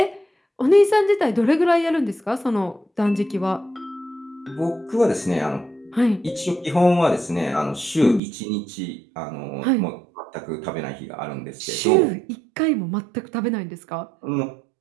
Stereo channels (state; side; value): drops out; left; at 8.2 s